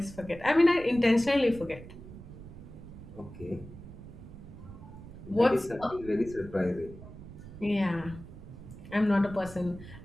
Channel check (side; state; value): right; noise; rumble, 15 dB below the sound